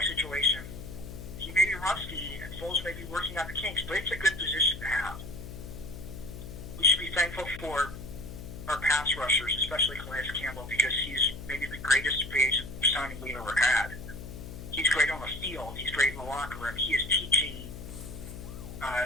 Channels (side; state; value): left; noise; hum, 11 dB below the sound